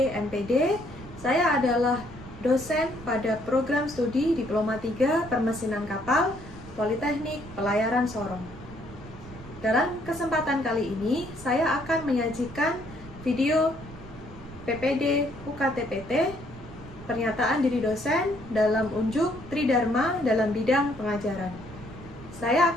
MPD. Saya adalah dosen pada program studi Diploma 3 Permesinan Kapal Politeknik Pelayaran Sorong. Dalam kesempatan kali ini, saya akan menyajikan video PPD UKTPT pernyataan diri dosen dalam unjuk Tridharma dalam bidang pengajaran. Saya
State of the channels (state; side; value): noise; right; rumble, 17 dB below the sound